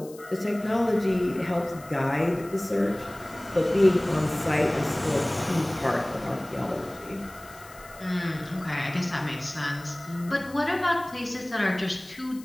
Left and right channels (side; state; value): left; noise; hiss, 21 dB below the sound